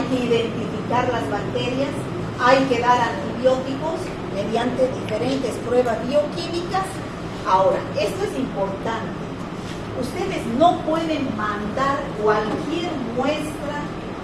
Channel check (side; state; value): both; identical; correlation 1.00